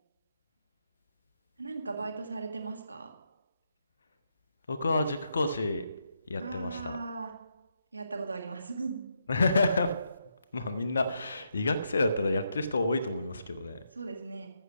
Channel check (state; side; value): inverted; both; correlation -0.80